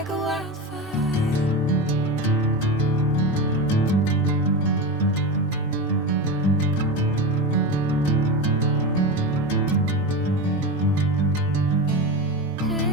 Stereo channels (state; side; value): normal; both; correlation 0.22